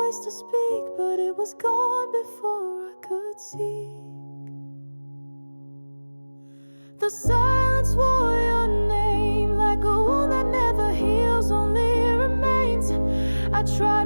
to speak, but it was gone before I could see. The silence wore your name like a wound that never heals, only remains. I try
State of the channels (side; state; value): both; inverted; correlation -1.00